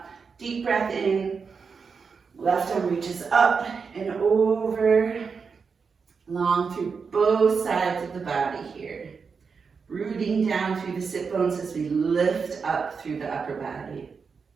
deep breath in, left arm reaches up and over, long through both sides of the body here. Rooting down through the sit bones as we lift up through the upper body.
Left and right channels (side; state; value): left; quieter; 5.4 dB